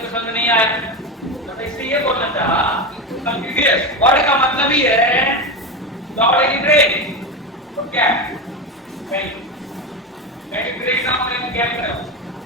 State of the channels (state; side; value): normal; both; correlation 0.17